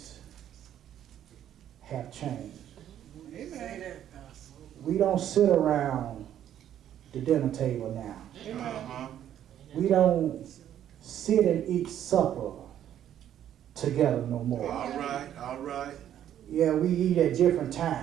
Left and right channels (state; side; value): quieter; left; 10.8 dB